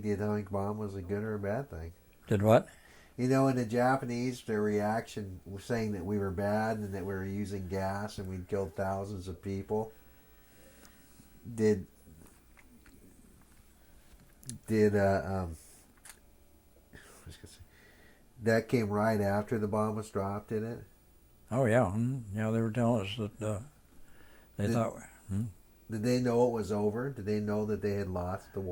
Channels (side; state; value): both; identical; correlation 1.00